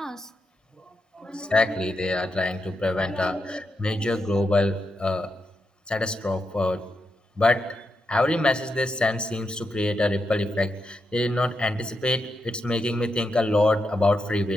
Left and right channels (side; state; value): both; normal; correlation 0.85